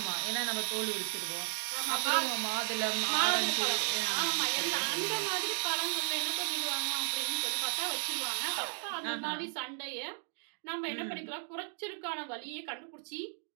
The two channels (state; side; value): silent; left; 55 dB below the other